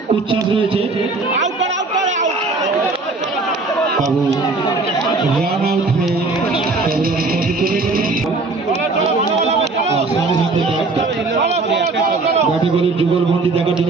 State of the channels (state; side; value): quieter; left; 3.6 dB